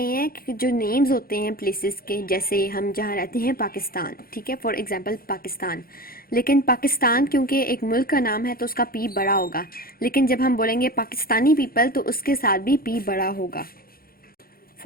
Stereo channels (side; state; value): right; late; 0.43 ms